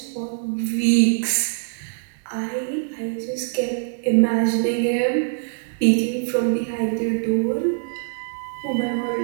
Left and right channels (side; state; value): left; silent; 63 dB below the other